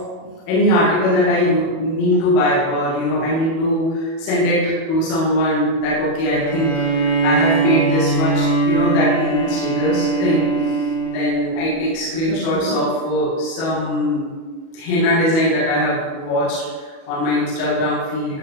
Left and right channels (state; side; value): late; right; 37 ms